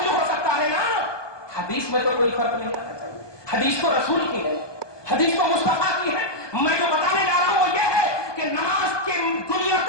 ہو سکتا ہے نا، حدیث میں تو کوئی فرق نہیں آنا چاہیے، حدیث تو رسول کی ہے، حدیث تو مصطفیٰ کی ہے۔ میں جو بتانے جا رہا ہوں وہ یہ ہے کہ نماز کے دنیا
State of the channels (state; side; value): late; right; 1.2 ms